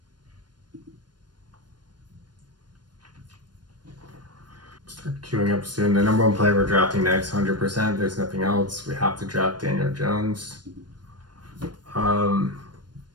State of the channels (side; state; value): left; late; 0.70 ms